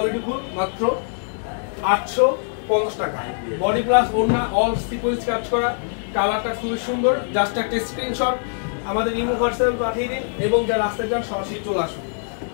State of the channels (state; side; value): silent; right; 64 dB below the other